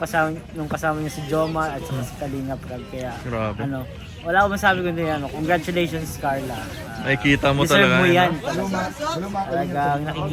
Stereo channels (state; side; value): identical; both; correlation 1.00